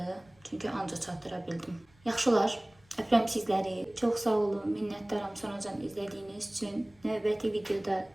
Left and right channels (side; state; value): left; noise; rumble, 30 dB below the sound